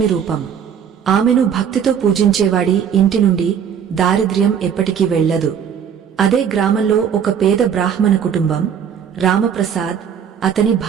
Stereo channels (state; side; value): quieter; left; 8.0 dB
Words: రూపం. ఆమెను భక్తితో పూజించేవాడి ఇంటి నుండి దారిద్ర్యం ఎప్పటికీ వెళ్లదు. అదే గ్రామంలో ఒక పేద బ్రాహ్మణ కుటుంబం, రామప్రసాద్, అతని